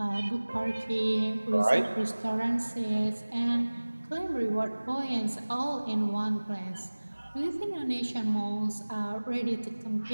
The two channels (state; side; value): inverted; both; correlation -1.00